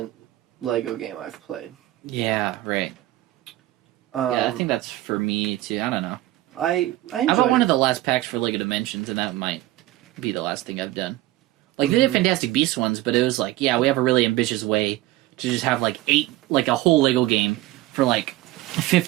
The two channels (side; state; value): left; quieter; 16.7 dB